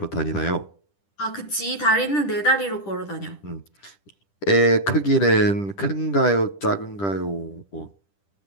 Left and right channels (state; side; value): late; right; 10 ms